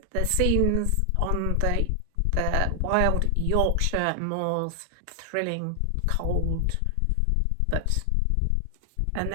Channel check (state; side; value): different; both; correlation 0.00